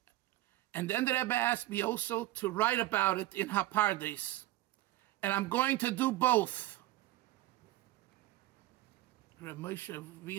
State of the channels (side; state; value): left; quieter; 16.3 dB